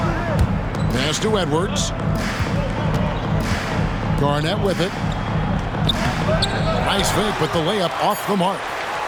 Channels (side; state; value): both; identical; correlation 1.00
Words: Pass to Edwards. Garnett with it. Nice fake, but the layup off the mark.